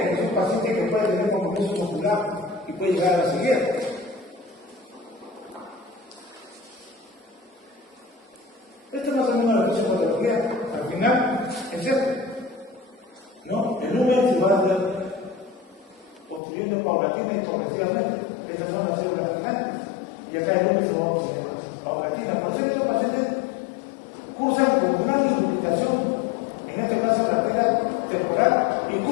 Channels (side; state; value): right; drops out; at 16.4 s